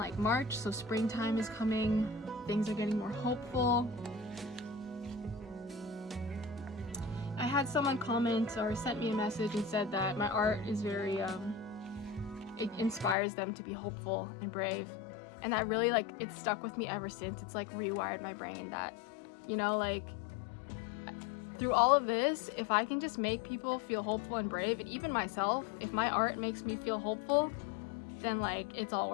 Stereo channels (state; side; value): drops out; right; at 13.2 s